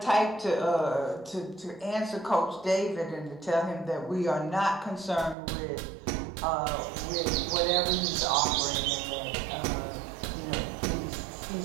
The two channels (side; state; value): left; drops out; at 5.4 s